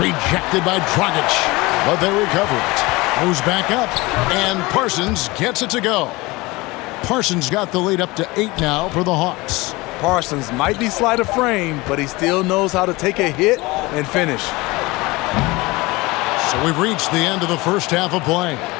by Dragic. But they recover it. Goes back up. And Parsons gets it to go. Parsons got the lead up to 8 now for the Hawks. Parsons might be slight of frame, but he still knows how to take a hit and finish. So we've reached the end of the first half of play.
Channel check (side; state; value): right; quieter; 22.4 dB